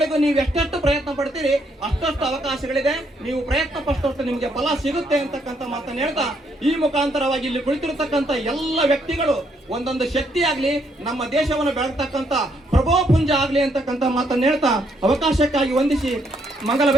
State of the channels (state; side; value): normal; both; correlation 0.73